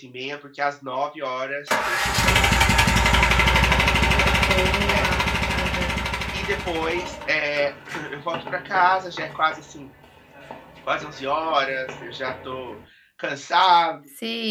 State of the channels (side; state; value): both; identical; correlation 1.00